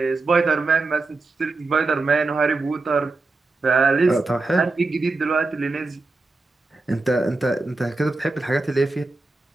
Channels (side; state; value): left; quieter; 3.5 dB